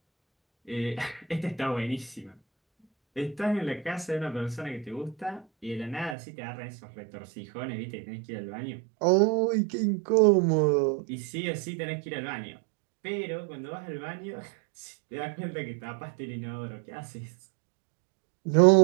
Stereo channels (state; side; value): drops out; left; at 6.2 s